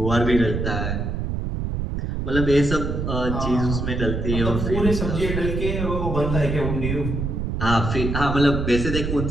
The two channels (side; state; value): right; noise; rumble, 2 dB below the sound